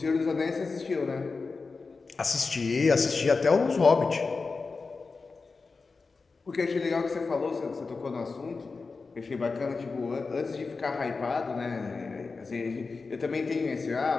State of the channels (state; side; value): quieter; right; 4.3 dB